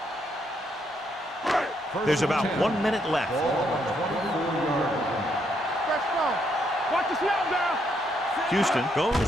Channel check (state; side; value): normal; both; correlation 0.75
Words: There's about 1 minute left. Let's go. Watch the snap down. Houston